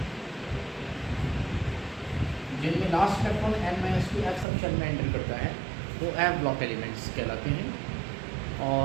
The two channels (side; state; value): left; drops out; at 4.5 s